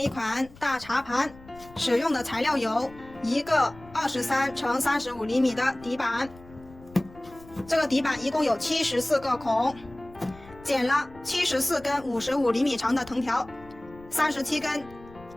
款大茶盘使用的材料有一个23乘35厘米的底板，这个底板一共有74个孔，剪了74根55厘米长的藤条，37根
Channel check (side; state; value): left; noise; rumble, 21 dB below the sound